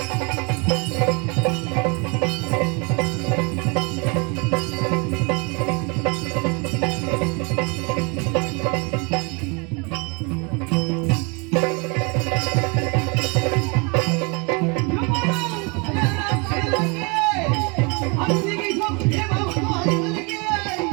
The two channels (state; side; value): quieter; left; 30.9 dB